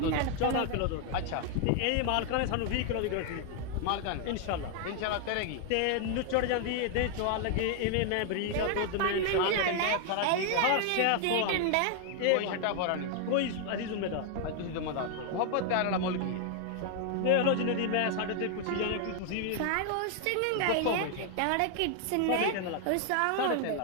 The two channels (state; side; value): different; both; correlation 0.00